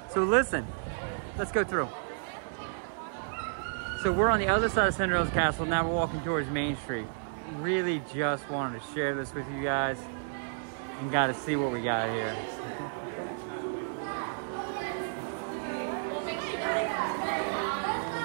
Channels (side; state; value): left; silent; 57 dB below the other